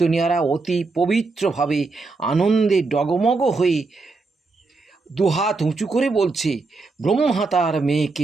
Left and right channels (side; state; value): left; quieter; 3.8 dB